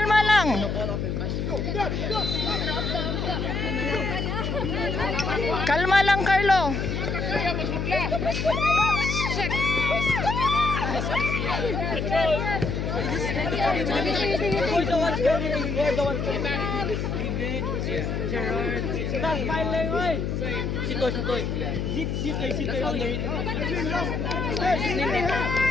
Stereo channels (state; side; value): noise; left; hum, 1 dB below the sound